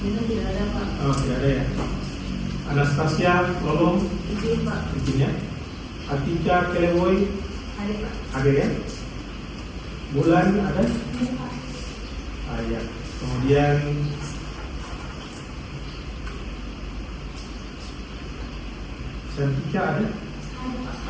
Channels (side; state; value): both; identical; correlation 1.00